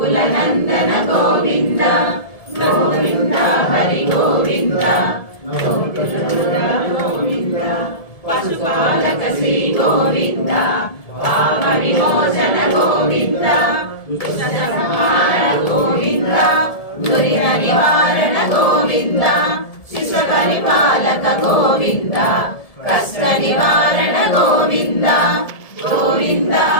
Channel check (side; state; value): right; late; 1.7 ms